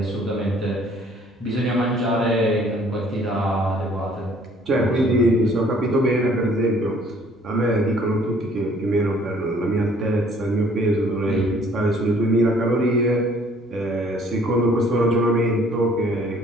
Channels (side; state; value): both; normal; correlation 0.58